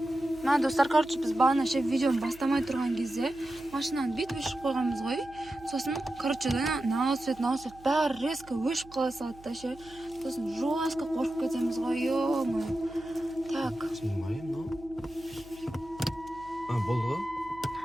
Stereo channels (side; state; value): right; noise; hum, 22 dB below the sound